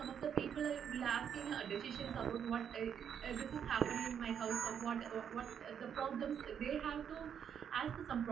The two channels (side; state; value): left; quieter; 8.2 dB